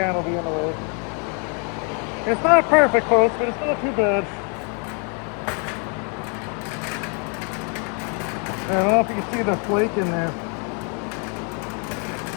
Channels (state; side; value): quieter; right; 37.3 dB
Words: will be in the way. It's not perfect, folks, but it's not too bad. I don't know if you can see the flake in there.